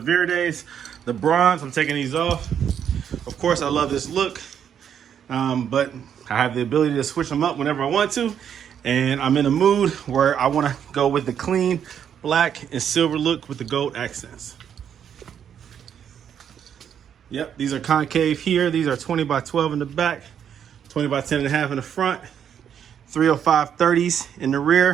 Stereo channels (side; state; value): left; quieter; 8.6 dB